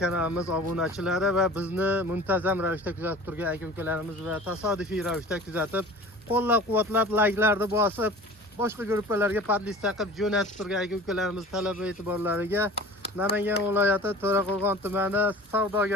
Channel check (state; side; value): normal; both; correlation 0.41